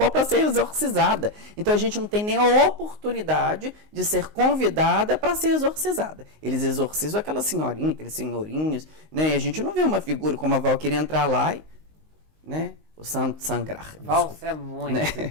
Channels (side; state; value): left; late; 19 ms